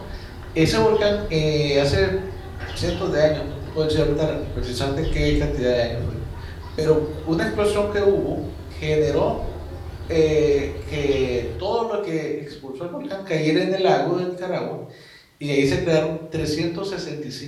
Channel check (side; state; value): both; identical; correlation 1.00